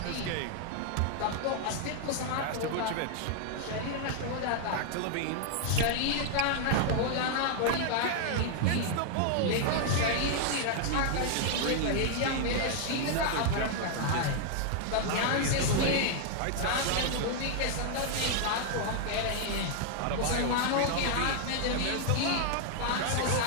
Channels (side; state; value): both; different; correlation 0.00